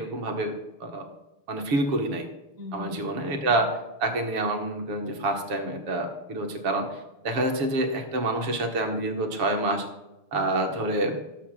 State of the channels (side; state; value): left; late; 6.7 ms